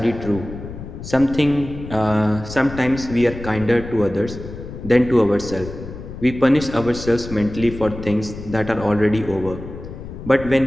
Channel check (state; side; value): noise; left; rumble, 11 dB below the sound